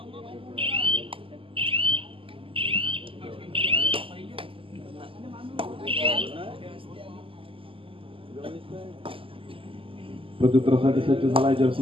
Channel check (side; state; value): left; late; 0.26 ms